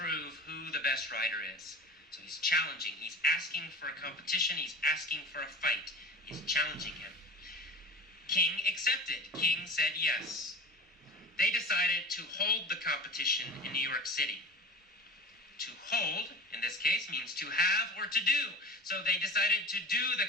who the best writer is. So he's challenging. He's asking for a competition. He's asking for a fight. He's challenging him. King accepted. King said yes. They decided to hold the competition in New York City. To hold, in this case, means to have or to do. So they decided to do the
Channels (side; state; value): both; normal; correlation 0.35